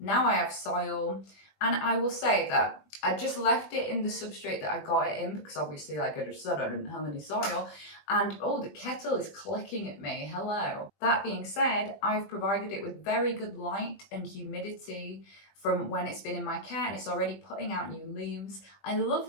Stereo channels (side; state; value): right; late; 20 ms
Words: I have soil, and I will say that I just left it in the substrate that I got it in, because obviously, like I just said, I didn't have any soil. And oh, the kettle is clicking at me. Hello. That being said, I've provided it with very good light and humidity from when it's been in my care, and it's already putting out new leaves. I love